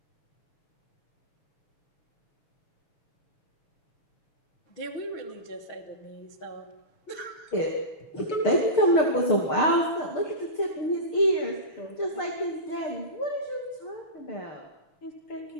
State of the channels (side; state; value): right; late; 6.6 ms